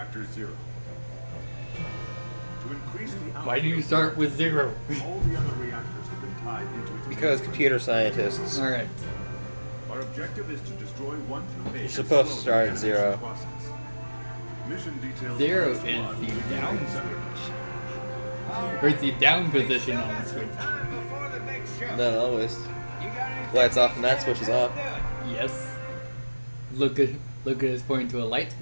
0. To increase the Why do you start with 0? all the other reactors have been tied into its Because computer scientists. Alright. Our objective is to destroy 1 through 8. You're supposed to start at 0. Mission details 0 is the down switch. Or it's the down position on the switch. Not always. Lights off and that switch is off. Yes. Look at us pointing to a light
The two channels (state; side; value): inverted; both; correlation -1.00